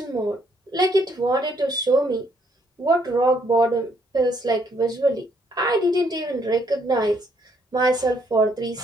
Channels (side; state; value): both; normal; correlation 0.70